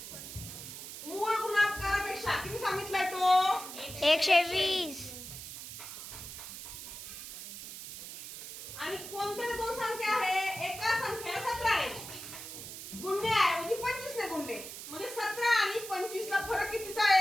मूळ गुणाकारापेक्षा किती सांगितलाय तो? 120. आणि कोणत्या दोन संख्या आहे? एका संख्येला 17 ने गुणण्याऐवजी 25 ने गुणले, म्हणजे 17 आणि 25 ला फरक कितीचा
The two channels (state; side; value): noise; right; hiss, 10 dB below the sound